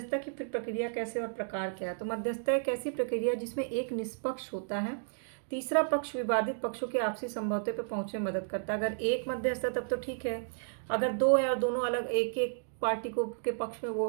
की फिर प्रक्रिया कैसे और प्रकार क्या है। तो मध्यस्थता एक ऐसी प्रक्रिया जिसमें एक निष्पक्ष होता है, तीसरा पक्ष विवादित पक्षों के आपसी समझौते पर पहुंचने में मदद करता है। अगर एक मध्यस्थ है तब तो ठीक है, अगर दो है और दोनों अलग एक एक पार्टी को के पक्ष में वो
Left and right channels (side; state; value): left; silent; digital silence